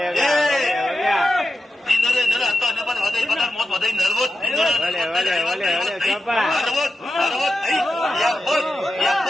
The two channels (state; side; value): normal; both; correlation 0.90